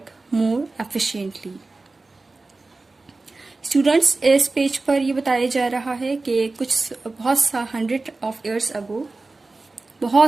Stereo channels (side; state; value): left; quieter; 3.5 dB